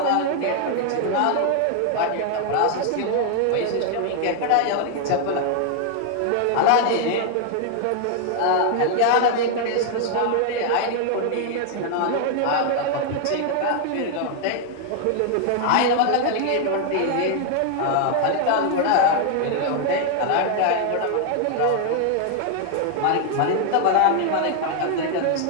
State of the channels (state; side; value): different; both; correlation 0.00